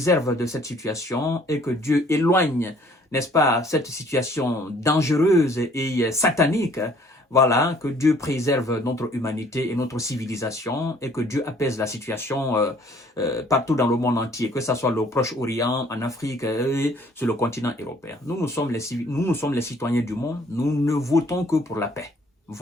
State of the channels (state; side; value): normal; both; correlation 0.58